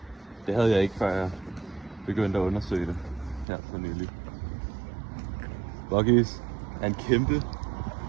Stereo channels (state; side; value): drops out; left; at 3.5 s